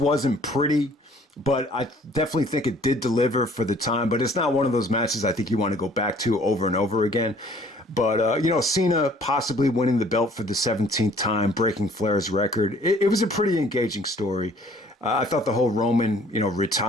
pretty, but I definitely think it did deliver for the time. But it's not one of those matches I think you want to go back to over and over again. But, Cena possibly winning the belt for the 17th time, breaking Flair's record. It was a pretty engaging story. I thought the whole Roman,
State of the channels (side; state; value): both; normal; correlation 0.56